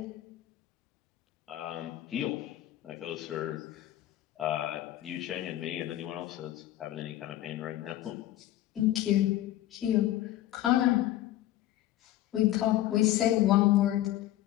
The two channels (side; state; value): right; quieter; 14.0 dB